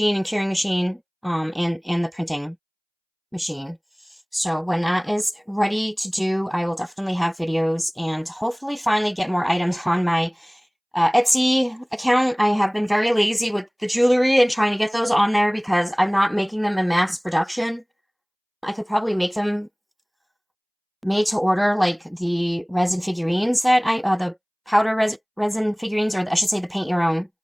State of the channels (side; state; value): both; identical; correlation 1.00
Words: and curing machine and the printing machine. So when that is ready to do, I will definitely have videos and hopefully finally get more items on my Etsy account. I have been very lazy with the jewelry and trying to get those on there because I'm not making them in mass production. I could probably make them made to order, like the resin figurines that the powder resin figurines, or I should say the paint your own